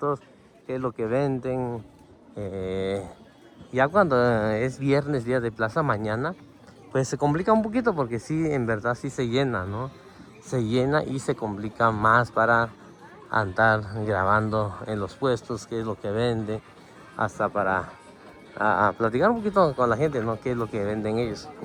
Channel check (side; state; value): both; identical; correlation 1.00